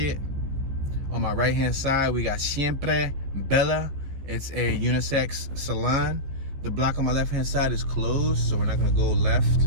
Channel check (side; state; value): left; late; 15 ms